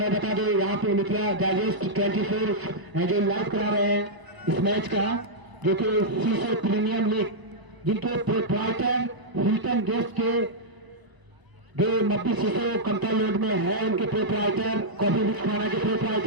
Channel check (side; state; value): left; late; 1.0 ms